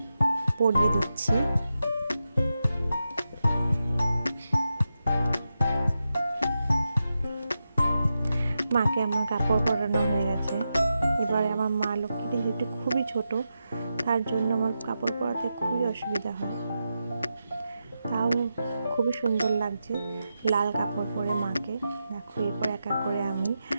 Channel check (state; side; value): inverted; both; correlation -0.89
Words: পরিয়ে দিচ্ছি। মাকে আমার কাপড় পরানো হয়ে গেছে। এবারে আমার মা লক্ষ্মীটি যেহেতু খুবই ছোট, তার জন্য আমার কাপড় পরাতে খুবই অসুবিধা হয়। তাও খুবই সুন্দর লাগছে লাল কাপড় পরে মাকে। দেখো, এরপর এক এক করে আমি